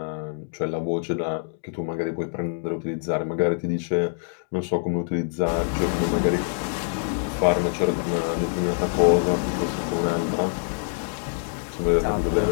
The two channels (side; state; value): right; silent; digital silence